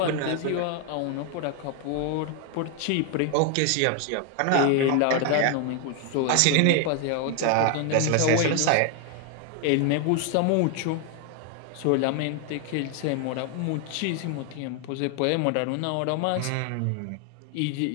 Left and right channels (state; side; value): different; both; correlation 0.01